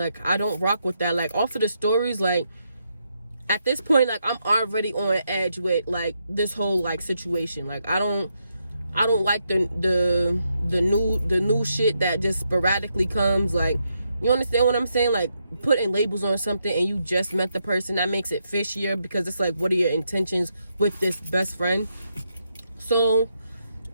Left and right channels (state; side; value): inverted; both; correlation -0.80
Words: I don't rock with that. Like, off of the stories, like, at this point, like, I'm already on edge with, like, this whole, like, situation. Like, I don't like the new shit that just sporadically comes. Like, you understand what I'm saying? Like, putting labels on something and you just met the person, that makes it fishier, because it's like, what are your intentions with this best friend? So